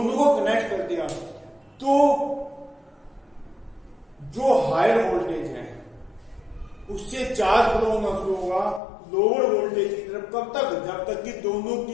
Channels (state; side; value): drops out; right; at 8.8 s